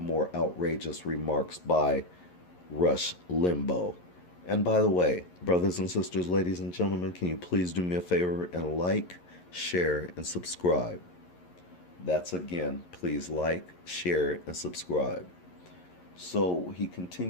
outrageous remarks by Rush Limbaugh. And by the way, brothers and sisters, ladies and gentlemen, can you please do me a favor and like, share, and subscribe? That's again, please like, share, and subscribe. So he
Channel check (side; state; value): right; late; 11 ms